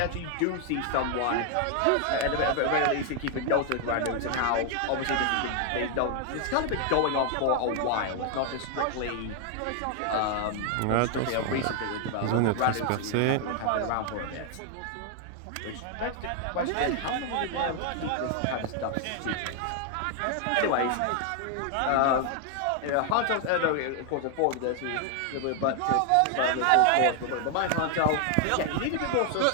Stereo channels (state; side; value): different; both; correlation 0.00